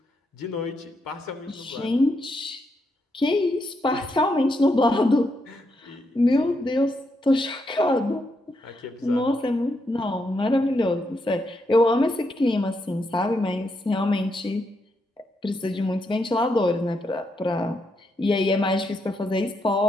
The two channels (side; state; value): both; normal; correlation 0.80